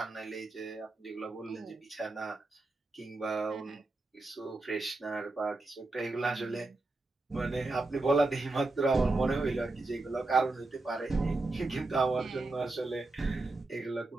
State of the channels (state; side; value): quieter; left; 3.1 dB